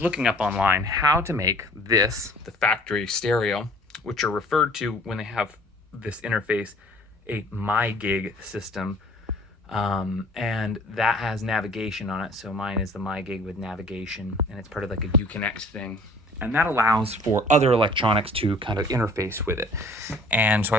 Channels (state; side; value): normal; both; correlation 0.51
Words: looking up online how to make this, the factory stereo, which are referred to when they have this interface, a MyGig system. And that has navigation on it. So mine is the MyGig with navigation, and it's part of like a Uconnect thing. And that allows for other electronics to kind of interface with it. And so I